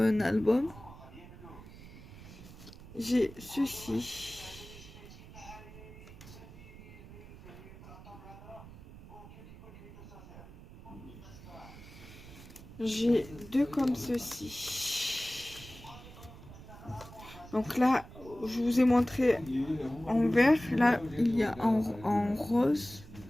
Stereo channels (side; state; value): right; noise; rumble, 17 dB below the sound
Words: album. J'ai ceci. J'ai 2 comme ceci. Donc là, je vous ai montré en vert. Là, il y a en rose.